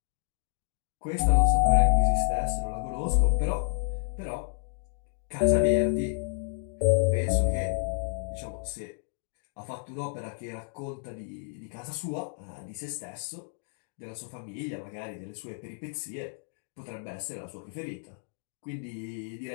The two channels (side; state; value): right; silent; digital silence